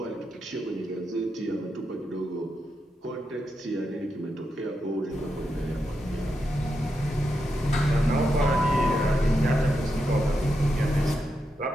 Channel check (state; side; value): normal; both; correlation 0.85